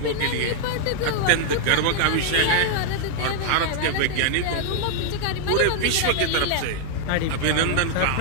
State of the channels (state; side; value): different; both; correlation -0.01